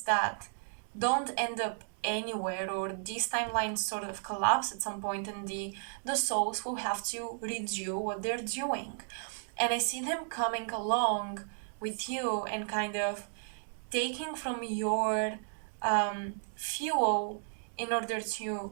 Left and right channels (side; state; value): left; silent; digital silence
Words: that don't end up anywhere, or these timelines sort of collapse at some point, and the souls will have to redo what they're doing. And I see them coming along with you and kind of taking from your fuel in order to